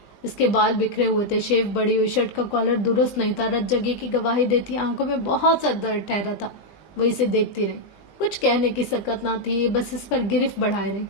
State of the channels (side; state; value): right; late; 20 ms